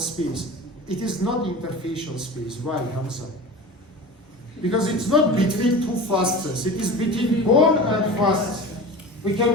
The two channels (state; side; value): normal; both; correlation 0.33